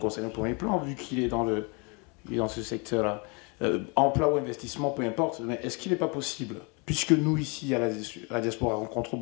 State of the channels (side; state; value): right; quieter; 31.7 dB